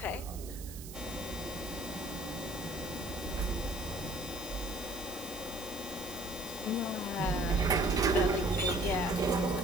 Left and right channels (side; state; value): right; noise; hiss, 14 dB below the sound